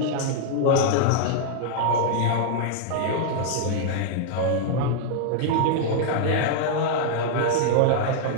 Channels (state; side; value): different; both; correlation -0.01